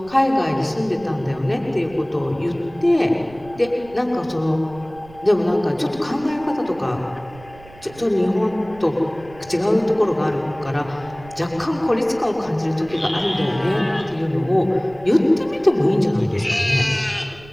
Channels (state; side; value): noise; right; rumble, 21 dB below the sound